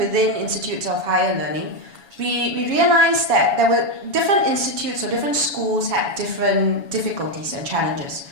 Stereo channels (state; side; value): late; left; 7.2 ms